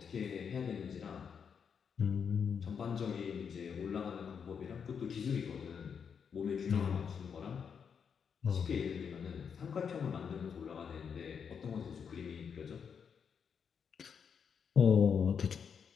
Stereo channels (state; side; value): quieter; right; 6.9 dB